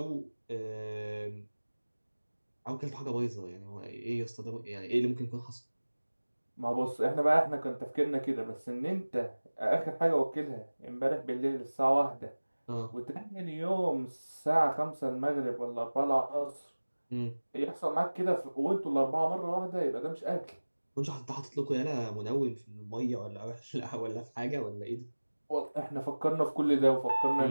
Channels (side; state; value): both; inverted; correlation -1.00